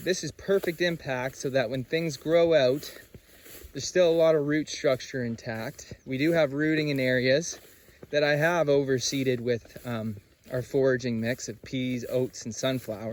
is perfect impact so that when things grow out, there's still a lot of root structure intact. We do have rooting in areas that I have overseeded with our foraging mix of peas, oats, and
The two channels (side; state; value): both; identical; correlation 1.00